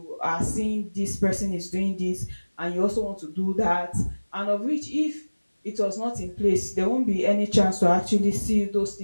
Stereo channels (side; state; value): both; inverted; correlation -1.00